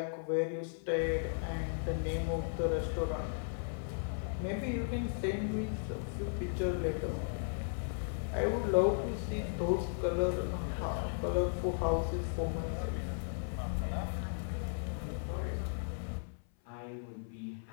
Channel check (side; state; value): right; silent; 54 dB below the other